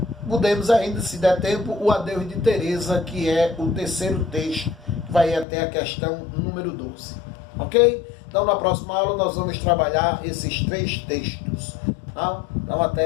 podemos ainda, se der tempo, o Adeus de Teresa, que é o terceiro texto, que vai até a questão número 12. Ok? Então, na próxima aula, nós vamos trabalhar esses 3 textos. Tá? Então,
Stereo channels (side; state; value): right; drops out; at 5.5 s